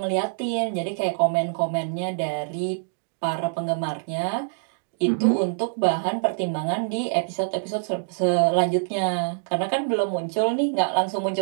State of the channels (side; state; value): left; silent; digital silence